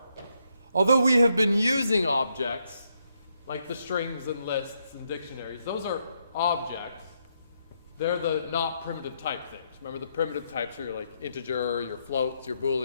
although we have been using objects, like the strings and lists and dictionaries, those are objects. They're the not primitive type things. Remember, the primitive types are your like integer, your floats, your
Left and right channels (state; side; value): inverted; both; correlation -0.77